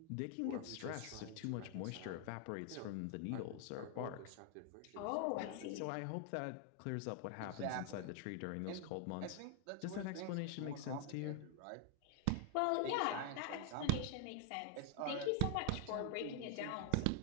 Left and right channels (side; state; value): both; different; correlation 0.00